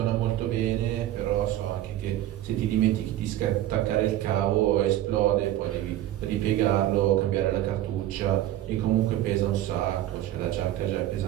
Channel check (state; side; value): quieter; left; 13.4 dB